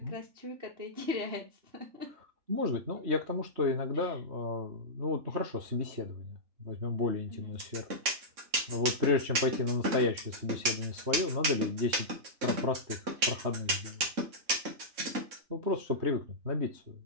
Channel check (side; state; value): left; late; 3.6 ms